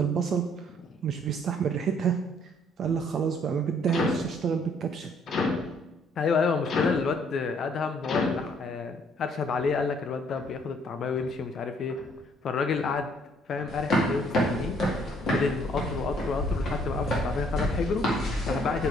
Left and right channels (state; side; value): normal; both; correlation 0.64